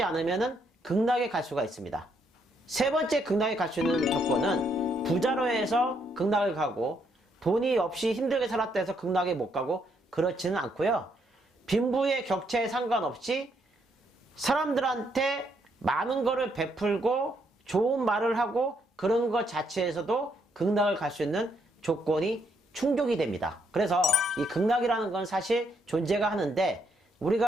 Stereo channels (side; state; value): both; normal; correlation 0.74